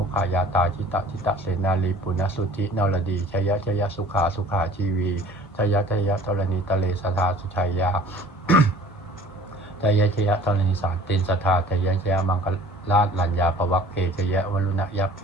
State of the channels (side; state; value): both; normal; correlation 0.48